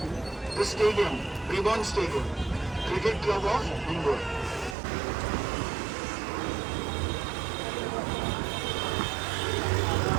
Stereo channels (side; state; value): left; drops out; at 4.8 s